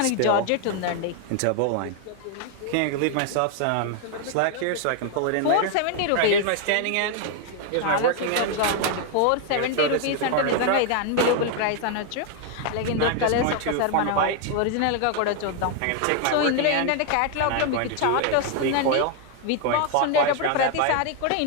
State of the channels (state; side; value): different; both; correlation 0.00